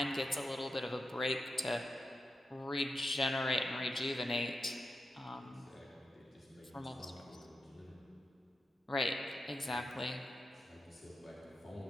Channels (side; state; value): both; normal; correlation 0.89